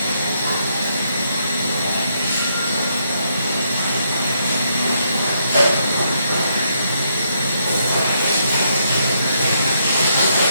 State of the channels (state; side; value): inverted; both; correlation -0.76